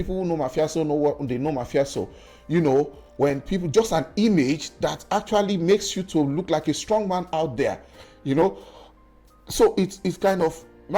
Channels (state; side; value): identical; both; correlation 1.00